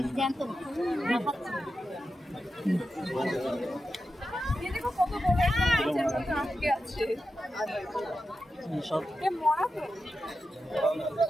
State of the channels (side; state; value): both; normal; correlation 0.90